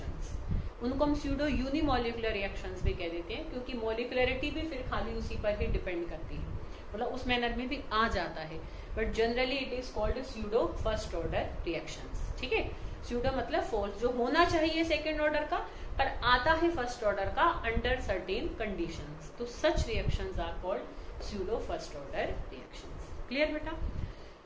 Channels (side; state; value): both; identical; correlation 1.00